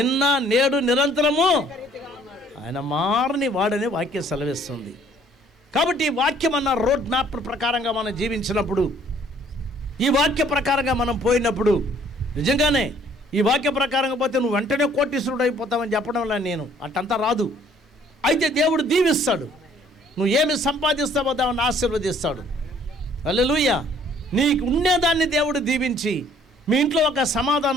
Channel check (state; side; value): normal; both; correlation 0.59